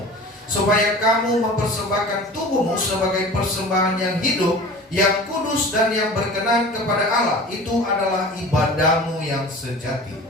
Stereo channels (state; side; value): normal; both; correlation 0.39